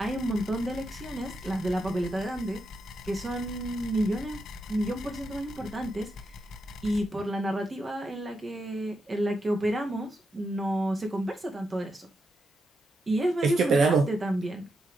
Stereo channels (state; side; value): normal; both; correlation 0.84